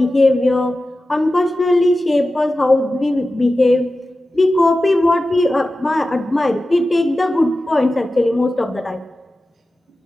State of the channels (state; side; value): normal; both; correlation 0.94